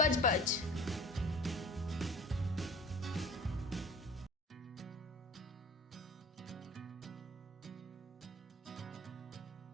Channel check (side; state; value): both; normal; correlation 0.41